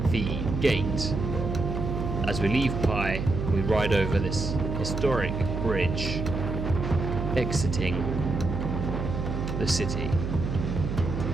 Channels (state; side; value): noise; right; hum, 3 dB below the sound